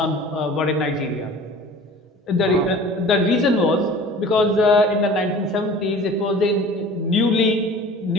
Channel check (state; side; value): normal; both; correlation 0.43